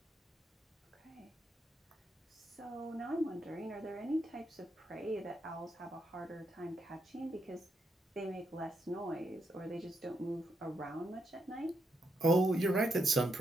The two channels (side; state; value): both; normal; correlation 0.80